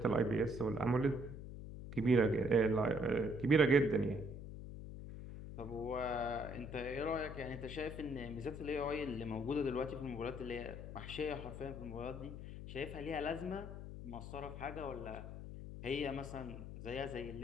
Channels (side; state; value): left; noise; hum, 10 dB below the sound